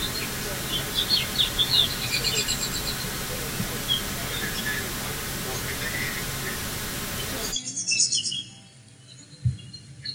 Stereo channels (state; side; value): identical; both; correlation 1.00